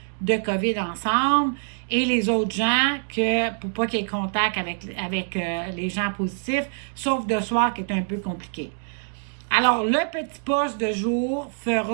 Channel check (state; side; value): silent; left; digital silence